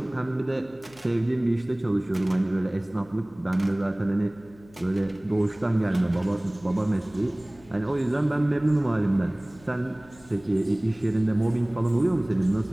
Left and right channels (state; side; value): noise; left; hum, 25 dB below the sound